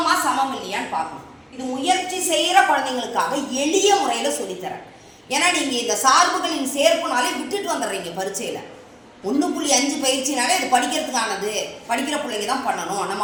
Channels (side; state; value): both; identical; correlation 1.00